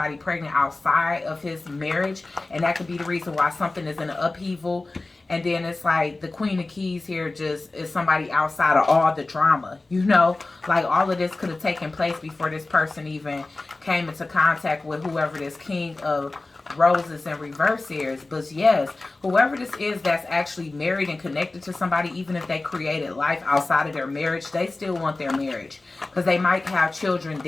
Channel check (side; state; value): right; quieter; 3.2 dB